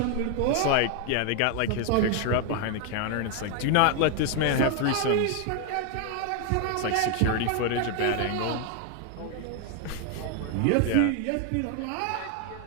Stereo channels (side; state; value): both; different; correlation 0.00